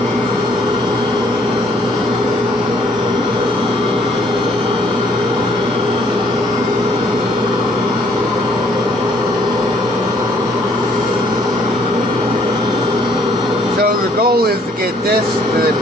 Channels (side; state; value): both; normal; correlation 0.63